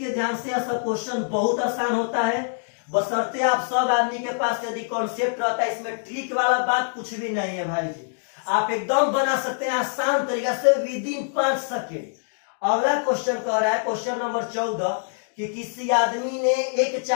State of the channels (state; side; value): silent; right; digital silence